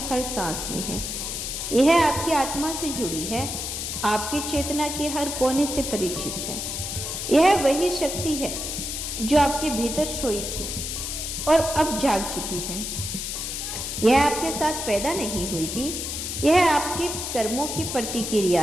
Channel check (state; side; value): noise; left; hiss, 4 dB below the sound